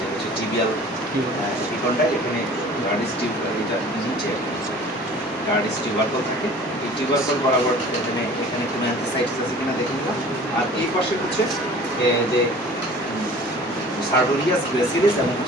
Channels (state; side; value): normal; both; correlation 0.45